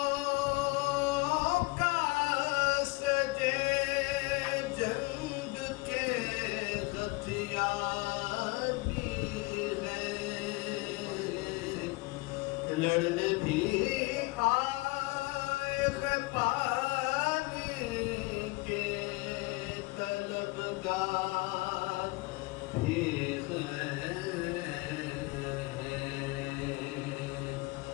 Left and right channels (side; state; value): right; quieter; 24.6 dB